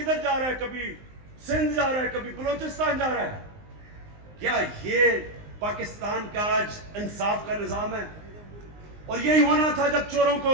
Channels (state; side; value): late; left; 19 ms